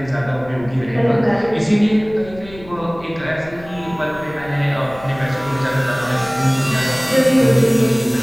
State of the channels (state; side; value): noise; left; rumble, 19 dB below the sound